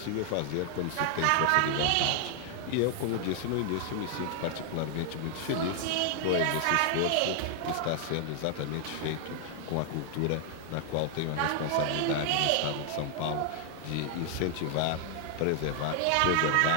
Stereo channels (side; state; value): both; different; correlation 0.00